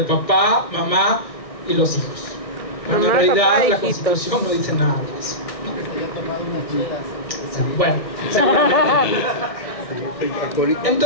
papá, mamá y los hijos. Cuando en realidad la Constitución no dice nada de eso. Bueno, seguramente.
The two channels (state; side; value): late; right; 1.6 ms